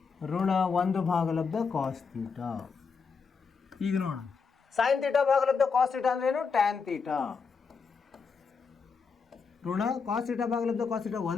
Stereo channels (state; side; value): quieter; right; 5.4 dB